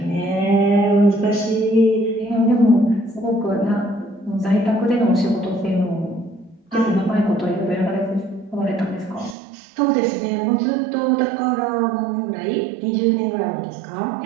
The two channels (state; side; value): drops out; left; at 9.3 s